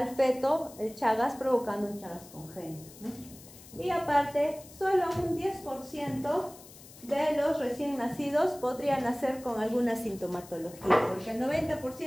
feto el Chagas, provocando un Chagas congénito, ¿no? Y aparte, solo un 10% de los recién nacidos podrían nacer con alguna sintomatología, porque el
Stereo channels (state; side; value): noise; left; hiss, 19 dB below the sound